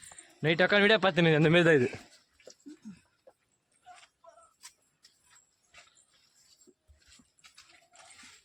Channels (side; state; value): both; identical; correlation 1.00